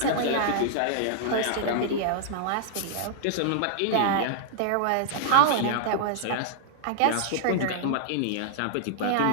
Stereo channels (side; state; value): both; different; correlation -0.01